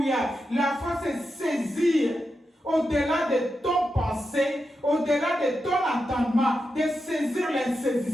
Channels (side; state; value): both; normal; correlation 0.88